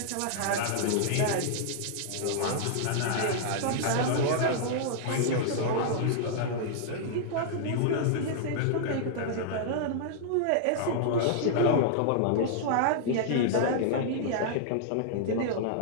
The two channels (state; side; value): different; both; correlation -0.01